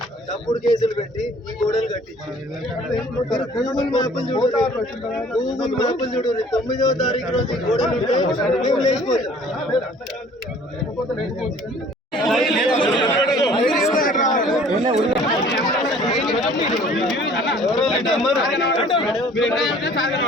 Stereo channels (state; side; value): normal; both; correlation 0.53